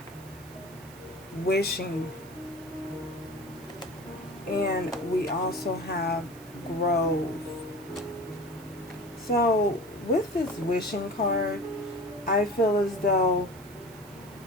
wishing. And we also have grove. So with this wishing card, I feel as though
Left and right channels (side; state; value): right; noise; hiss, 22 dB below the sound